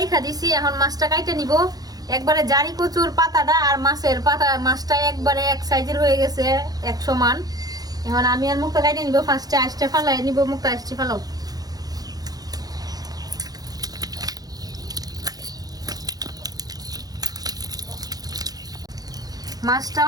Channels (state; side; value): late; left; 0.18 ms